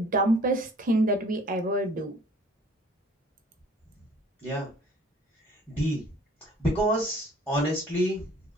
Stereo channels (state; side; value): normal; both; correlation 0.53